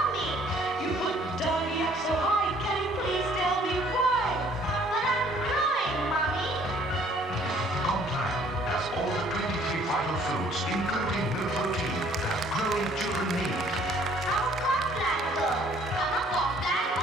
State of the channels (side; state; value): both; normal; correlation 0.59